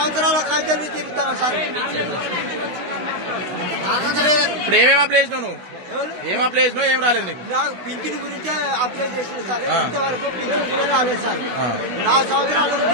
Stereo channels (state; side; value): late; left; 17 ms